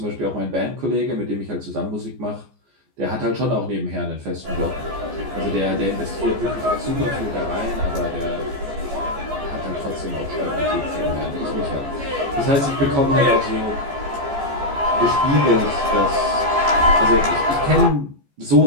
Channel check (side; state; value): left; late; 14 ms